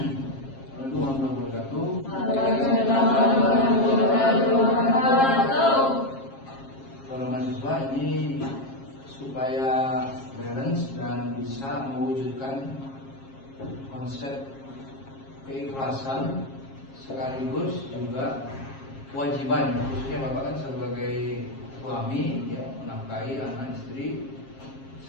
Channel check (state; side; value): late; right; 7.4 ms